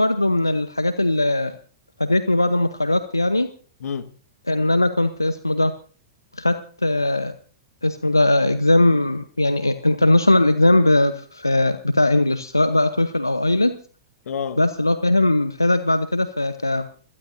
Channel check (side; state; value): both; inverted; correlation -0.96